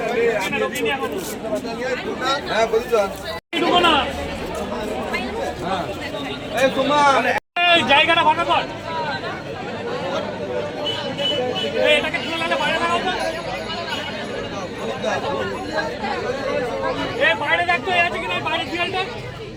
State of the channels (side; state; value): both; identical; correlation 1.00